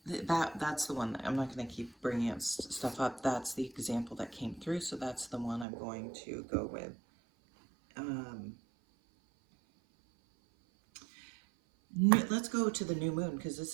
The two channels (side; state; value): left; drops out; at 5.7 s